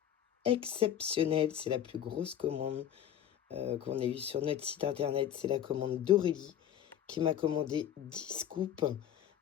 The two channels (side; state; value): right; quieter; 10.3 dB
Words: exceptionnelle. C'est la plus grosse commande qu'on ait eue sur notre site internet. C'est la commande d'Aurélie qui m'a commandé 10 scoops